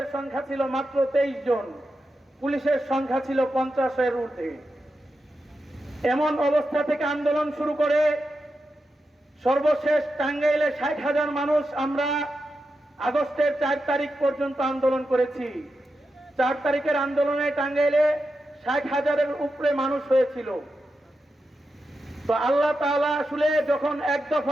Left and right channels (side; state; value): both; normal; correlation 0.89